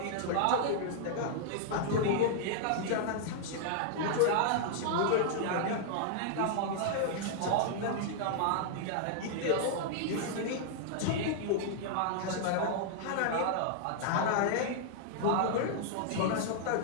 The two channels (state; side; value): different; both; correlation -0.01